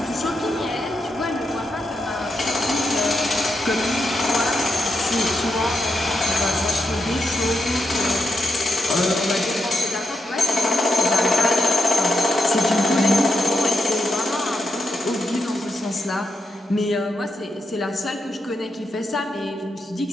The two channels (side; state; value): both; normal; correlation 0.84